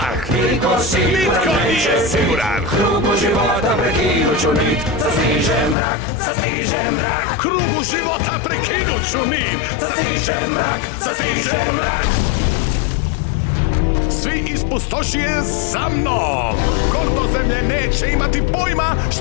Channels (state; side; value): drops out; right; at 5.8 s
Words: Nitko siguran neće siguran. Krugu života prekinuću nit. Sastiže mrak. Krugu života prekinuću nit. Sastiže mrak. Svi iz pustošije za mnom. Gordo zemlje neće imati pojma